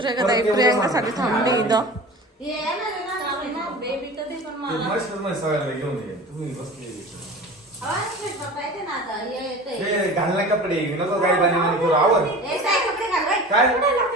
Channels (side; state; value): both; normal; correlation 0.36